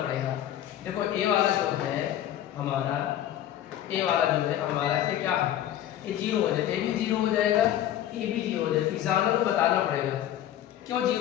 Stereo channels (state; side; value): quieter; right; 11.9 dB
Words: पड़ेगा। देखो ए वाला जो है हमारा, ए वाला जो है हमारा ये क्या है? ये जीरो हो जाएगा, ए भी जीरो हो जाएगा, ए भी जीरो हो जाएगा। एग्जाम को बताना पड़ेगा क्यों